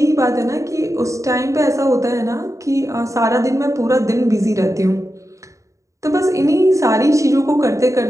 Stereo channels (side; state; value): left; late; 0.15 ms